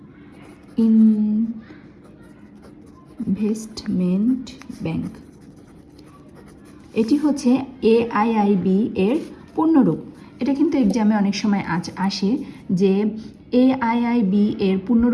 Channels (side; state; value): both; identical; correlation 1.00